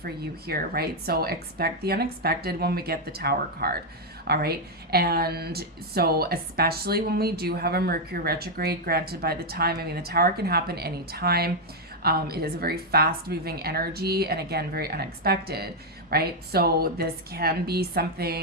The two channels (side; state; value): both; normal; correlation 0.00